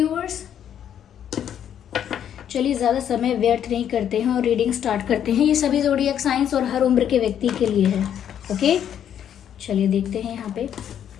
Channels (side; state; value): right; quieter; 9.5 dB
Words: चलिए ज़्यादा समय व्यर्थ नहीं करते हैं और रीडिंग स्टार्ट करते हैं। ये सभी ज़ोडिएक साइंस और हर उम्र के व्यक्ति के लिए है। ओके, चलिए देखते हैं यहाँ पे